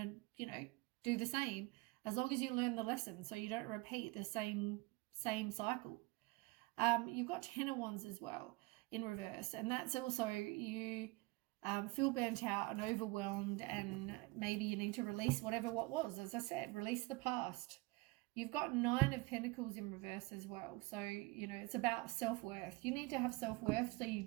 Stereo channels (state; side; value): quieter; left; 23.6 dB